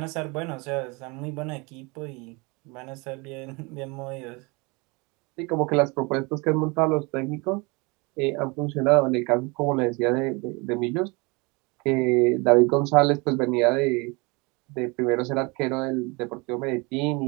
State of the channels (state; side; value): quieter; left; 27.9 dB